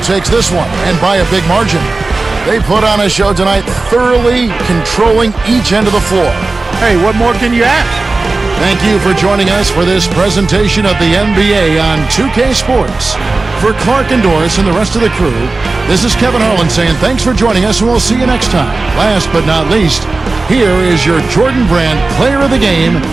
takes this one, and by a big margin. They put on a show tonight, thoroughly controlling each end of the floor. Hey, what more can you ask? Thank you for joining us for this presentation of the NBA on 2K Sports. For Clark and Doris and the rest of the crew, this is Kevin Harlan saying thanks for joining us, and we'll see you next time. Last but not least, here is your Jordan Brand Player of the Game,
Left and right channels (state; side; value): quieter; left; 3.5 dB